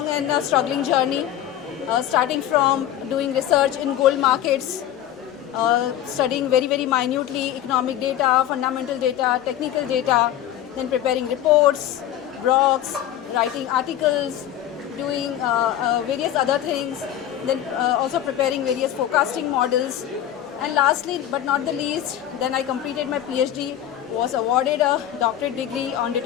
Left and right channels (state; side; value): quieter; right; 11.5 dB